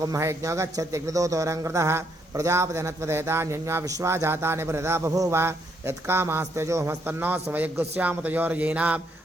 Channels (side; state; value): both; normal; correlation 0.73